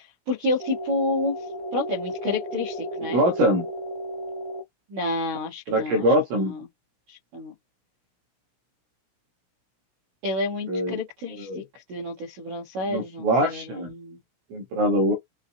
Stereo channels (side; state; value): left; late; 17 ms